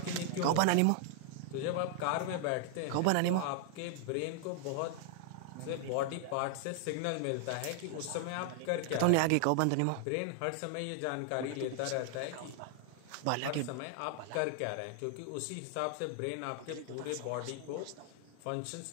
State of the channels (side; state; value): both; different; correlation 0.00